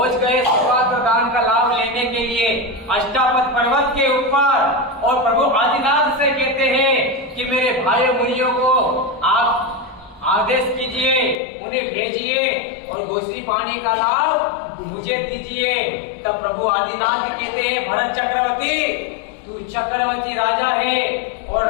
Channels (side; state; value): right; drops out; at 11.4 s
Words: गए सुपात्र दान का लाभ लेने के लिए अष्टापद पर्वत के ऊपर। और प्रभु आदिनाथ से कहते हैं कि मेरे भाई मुनियों को आप आदेश कीजिए, उन्हें भेजिए और गोश्री पानी का लाभ मुझे दीजिए। तब प्रभु आदिनाथ कहते हैं भरत चक्रवर्ती, तू चक्रवर्ती राजा है और